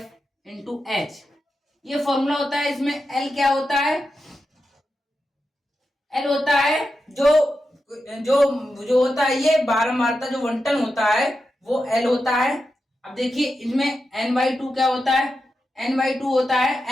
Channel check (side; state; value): both; normal; correlation 0.89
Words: into h, ये फॉर्मूला होता है। इसमें L क्या होता है, L होता है जो होता है ये बारंबारता जो बंटन होता है वो L होता है। अब देखिए इसमें n/2 क्या होता है, n/2 होता